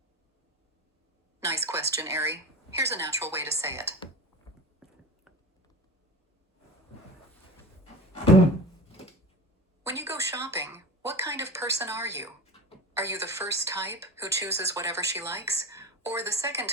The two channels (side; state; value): both; normal; correlation 0.30